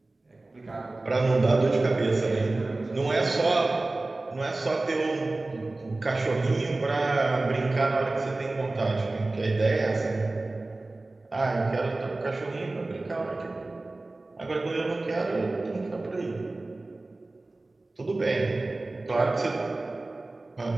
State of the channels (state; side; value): quieter; left; 3.1 dB